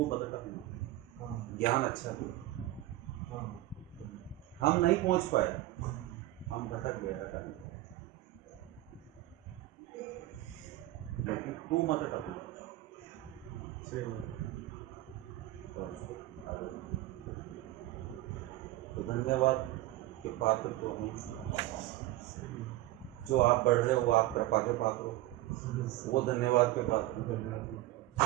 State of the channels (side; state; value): left; quieter; 16.1 dB